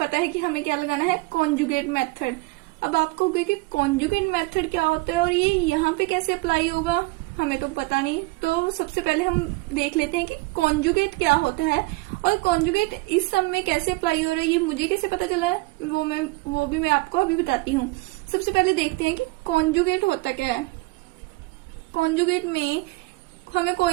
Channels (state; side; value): quieter; left; 23.1 dB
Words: है कि हमें क्या लगाना है, कॉन्जुगेट मेथड। अब आप कहोगे कि कॉन्जुगेट मेथड क्या होता है और ये यहाँ पे कैसे अप्लाई होगा, हमें तो पता नहीं। तो सबसे पहले हम देख लेते हैं कि कॉन्जुगेट क्या होता है और कॉन्जुगेट इस सम में कैसे अप्लाई हो रहा है, ये मुझे कैसे पता चला है वो भी मैं आपको अभी बताती हूँ। सबसे पहले देखते हैं कि कॉन्जुगेट होता क्या है। कॉन्जुगेट में हमें